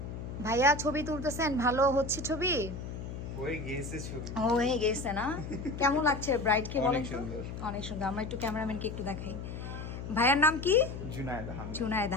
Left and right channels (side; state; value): left; noise; hum, 8 dB below the sound